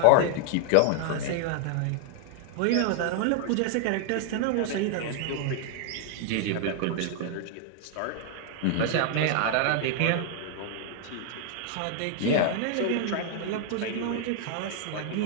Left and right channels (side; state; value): both; different; correlation 0.00